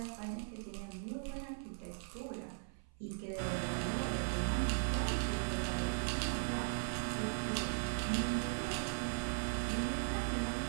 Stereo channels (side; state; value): left; silent; 52 dB below the other